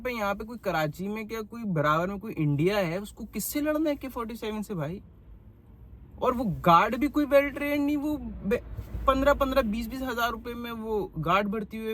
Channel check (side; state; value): both; identical; correlation 1.00